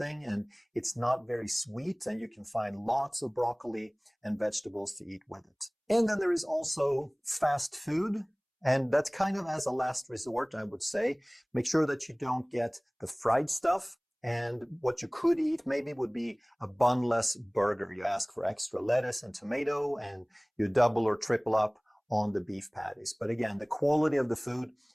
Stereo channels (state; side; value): identical; both; correlation 1.00